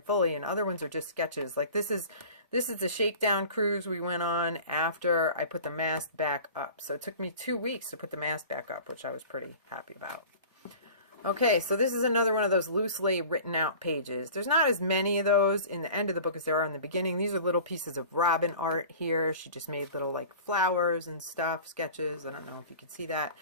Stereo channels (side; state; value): both; inverted; correlation -0.41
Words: fully, and other ones are just sketches. Like this is the shakedown cruise we went on after I put the mast back up. So it took me 2 weeks to put the mast back up, which I was pretty happy about. Okay, so this is another one of those loosely written out pages. There's not as many of those in the end of the book as there are in the beginning. These are little pieces of Robin art here. She just made little like flowers and stuff, sketches. I don't know if you can see that.